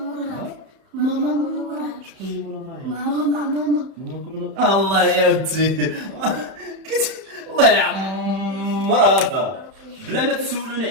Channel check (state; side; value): late; left; 31 ms